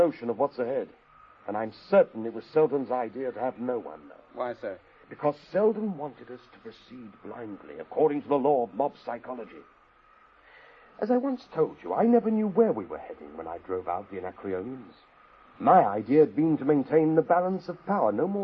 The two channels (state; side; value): identical; both; correlation 1.00